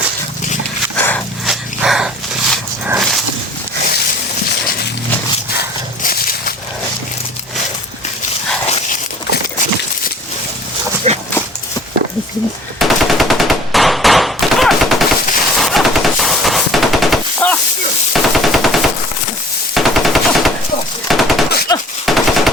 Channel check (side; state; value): both; normal; correlation 0.49